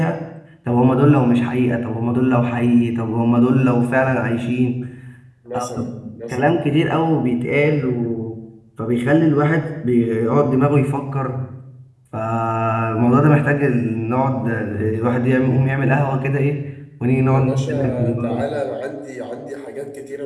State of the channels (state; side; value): identical; both; correlation 1.00